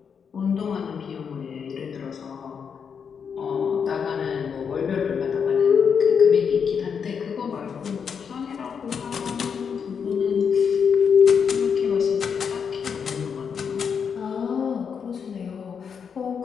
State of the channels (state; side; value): quieter; right; 6.7 dB